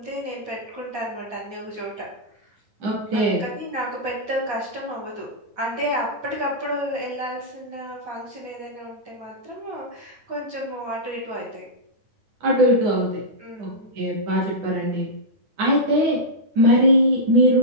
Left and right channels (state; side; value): late; left; 9.4 ms